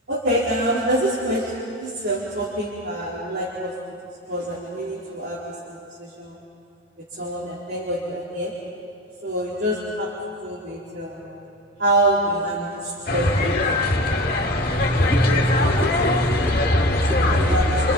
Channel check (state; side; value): normal; both; correlation 0.32